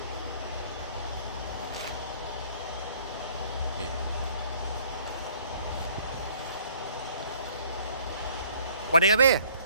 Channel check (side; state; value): both; inverted; correlation -0.58